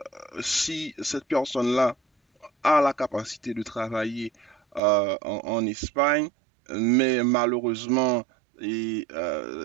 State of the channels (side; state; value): left; drops out; at 4.8 s